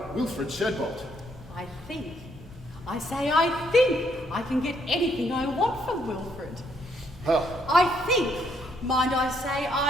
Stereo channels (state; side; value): normal; both; correlation 0.71